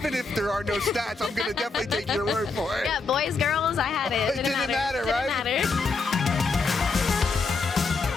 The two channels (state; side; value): quieter; right; 4.2 dB